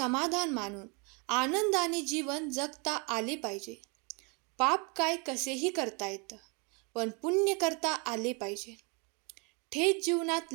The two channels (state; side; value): quieter; left; 32.1 dB